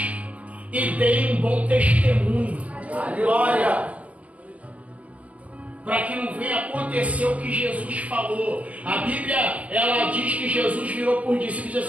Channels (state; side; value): late; left; 0.067 ms